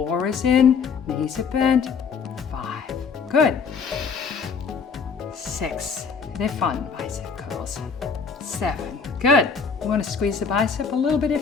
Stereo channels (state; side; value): quieter; right; 5.7 dB